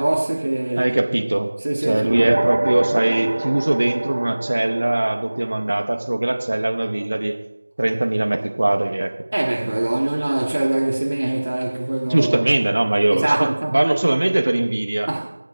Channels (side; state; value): both; inverted; correlation -1.00